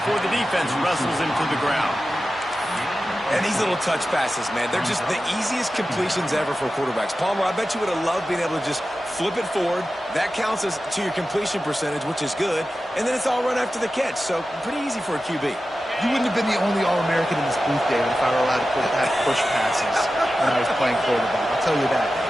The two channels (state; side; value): normal; both; correlation 0.93